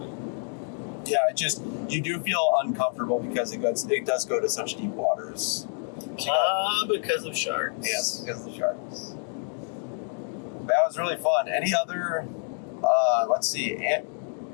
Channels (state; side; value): silent; right; 60 dB below the other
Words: Yeah, it just you do feel uncomfortable because it does go to such deep waters. Because of sharks. Yes, because of the sharks. That was really fun. Any other? Let's see.